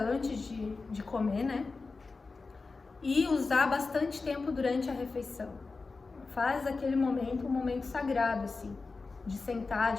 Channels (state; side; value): quieter; right; 4.0 dB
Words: de comer, né? E usar bastante tempo durante a refeição. Faz aquele momento um momento sagrado, assim, de sentar,